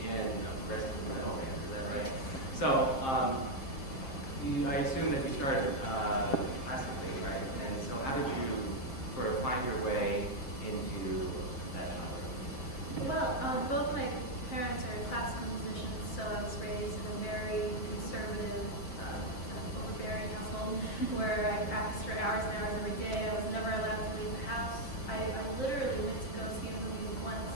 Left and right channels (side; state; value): right; late; 7.5 ms